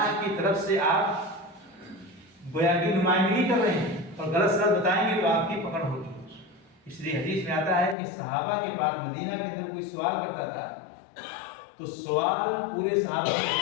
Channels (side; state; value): right; drops out; at 8.0 s